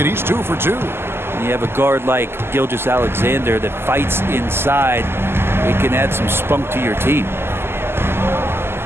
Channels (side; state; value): left; late; 0.12 ms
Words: He's 2 for 2. You have a guard like Gilgeous-Alexander that fights inside. It can add some spunk to your team.